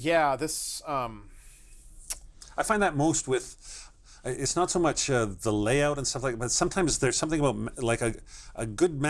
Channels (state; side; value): identical; both; correlation 1.00